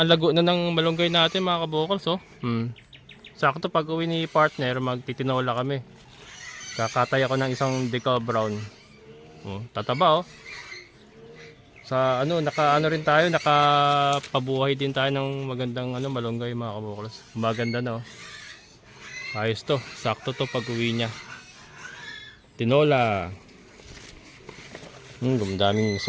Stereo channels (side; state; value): both; identical; correlation 1.00